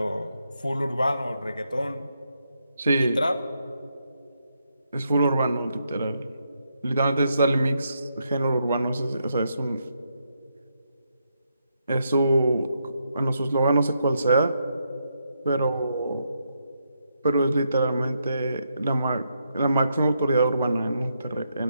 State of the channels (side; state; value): both; inverted; correlation -0.80